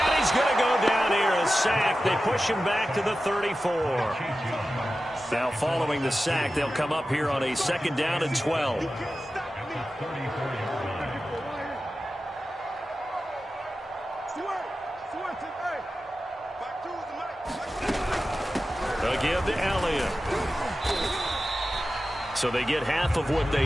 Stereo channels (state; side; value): normal; both; correlation 0.93